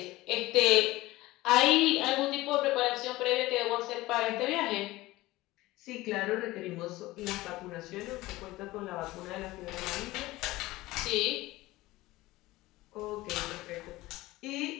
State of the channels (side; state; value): right; quieter; 18.6 dB